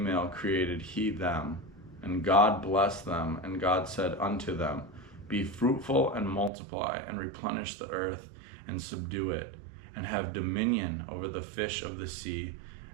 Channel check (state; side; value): drops out; left; at 6.5 s